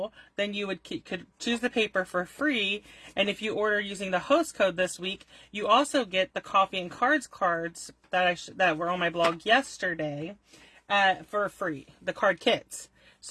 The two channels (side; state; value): both; identical; correlation 1.00